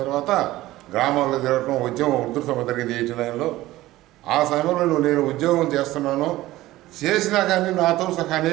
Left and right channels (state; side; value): quieter; left; 16.7 dB